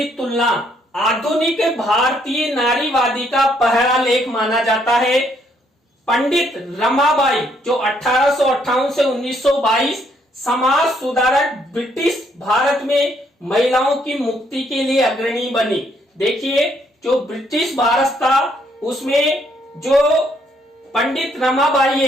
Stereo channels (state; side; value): normal; both; correlation 0.70